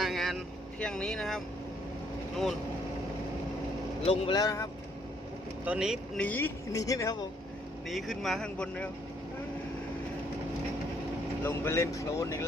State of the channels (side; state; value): both; normal; correlation 0.68